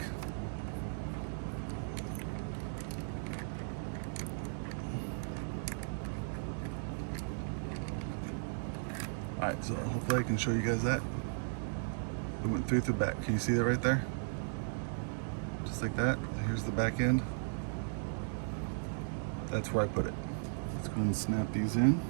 All right, so hopefully I can show you guys that. It went through the back. Can you see that right there? Just like that. Here's the back end. That's where I put it. Let's go ahead and snap these in.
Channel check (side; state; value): left; silent; digital silence